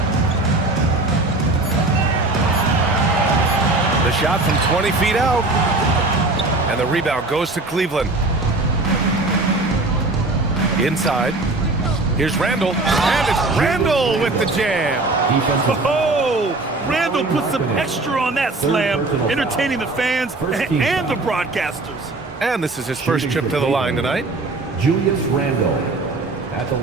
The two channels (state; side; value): quieter; left; 3.1 dB